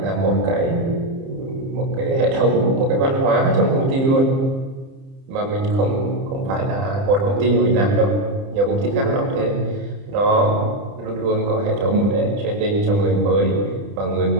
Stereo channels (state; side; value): late; left; 30 ms